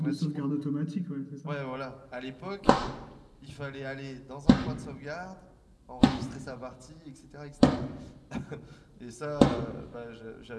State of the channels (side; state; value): both; identical; correlation 1.00